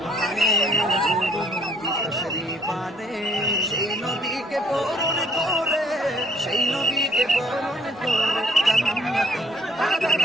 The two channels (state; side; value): normal; both; correlation 0.62